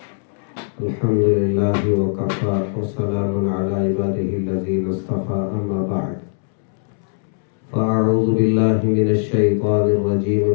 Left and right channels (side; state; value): right; silent; 66 dB below the other